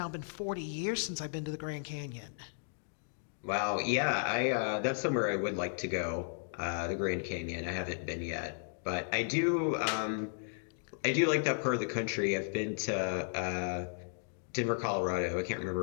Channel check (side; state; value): right; silent; digital silence